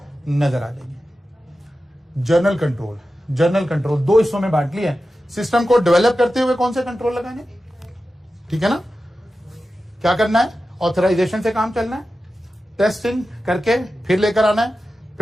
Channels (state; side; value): normal; both; correlation 0.93